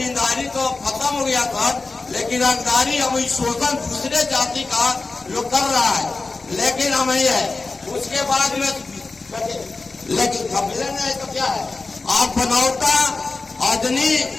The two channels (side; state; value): right; quieter; 3.7 dB